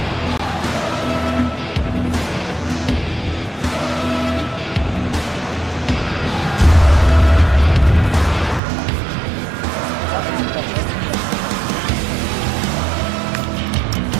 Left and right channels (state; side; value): drops out; left; at 8.6 s